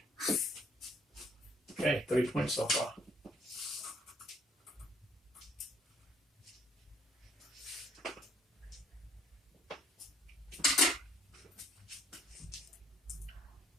Okay, 3 points so far.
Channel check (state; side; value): normal; both; correlation 0.63